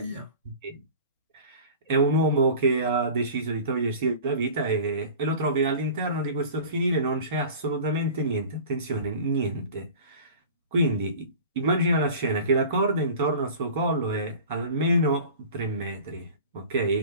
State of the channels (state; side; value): inverted; both; correlation -0.39